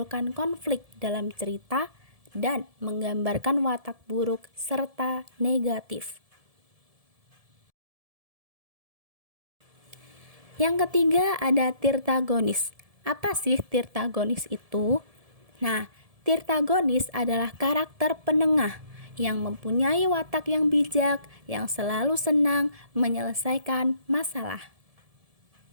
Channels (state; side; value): late; left; 1.7 ms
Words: konflik dalam cerita dan menggambarkan watak buruk serta negatif. Yang ketiga ada tirtagonis. Apa sih tirtagonis itu? Nah, tirtagonis adalah karakter penengah yang mempunyai watak yang bijak, yang selalu senang menyelesaikan masalah.